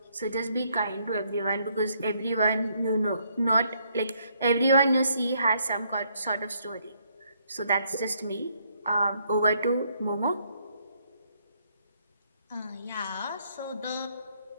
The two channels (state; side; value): inverted; both; correlation -0.71